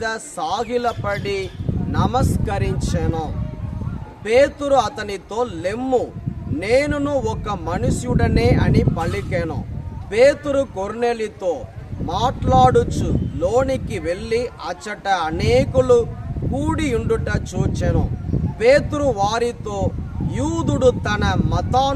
సాగిలపడి నమస్కరించెను. పేతురు అతనితో, లెమ్ము, నేనును ఒక మనుష్యుడనే అని పలికెను. పేతురు కొర్నేలితో మాట్లాడుచు లోనికి వెళ్ళి అచ్చట అనేకులు కూడి ఉండుట చూచెను. పేతురు వారితో, యూదుడు తన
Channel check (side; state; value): both; identical; correlation 1.00